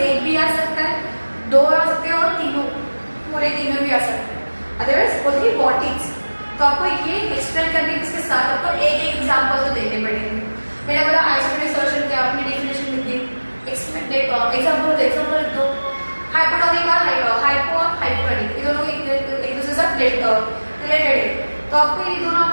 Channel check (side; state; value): both; inverted; correlation -1.00